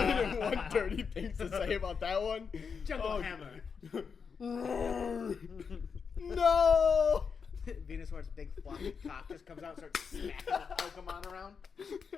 dirty things to say about that one? Jungle Hammer. No! Venusaur's big floppy cock just comes out and starts smacking the Pokemon around.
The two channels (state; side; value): quieter; right; 5.9 dB